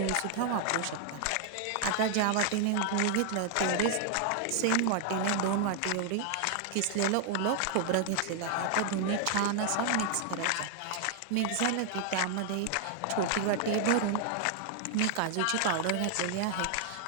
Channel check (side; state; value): both; different; correlation 0.00